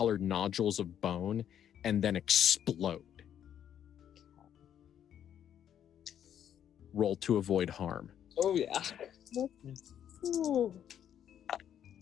nodules of bone, and then explode. Roll to avoid harm. Oh yeah. Ooh.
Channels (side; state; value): right; quieter; 9.7 dB